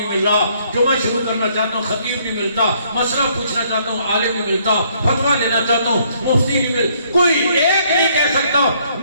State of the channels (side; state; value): both; inverted; correlation -0.66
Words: مل رہا، جمعہ شروع کرنا چاہتا ہوں خطیب نہیں ملتا، مسئلہ پوچھنا چاہتا ہوں عالم نہیں ملتا، فتویٰ لینا چاہتا ہوں مفتی نہیں مل، کوئی ایک نہیں کہہ سکتا.